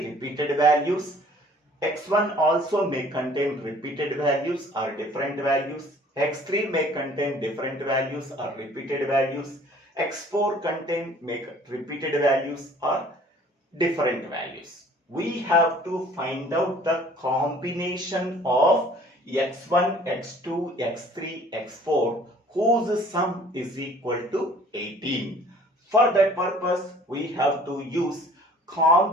repeated values. x1 also may contain repeated values or different values. x3 may contain different values or repeated values. x4 contain repeated values or different values. We have to find out the combination of x1, x2, x3, x4 whose sum is equal to 18. For that purpose, we have to use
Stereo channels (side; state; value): both; normal; correlation 0.53